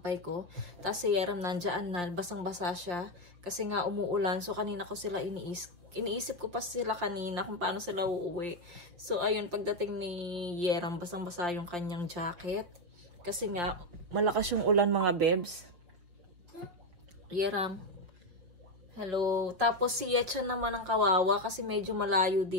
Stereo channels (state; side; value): late; left; 5.6 ms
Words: ko. Tapos si Yeram nandyan na, basang-basa siya. Kasi nga umuulan. So, kanina ko sila iniisip ko pa sila kanina kung paano sila uuwi. So, ayun, pagdating ni Yeram, basang-basa yung kanyang jacket. Kasi nga, malakas yung ulan, mga bebs. Yeram. Hello. Tapos si Yetchan naman ang kawawa kasi medyo malayo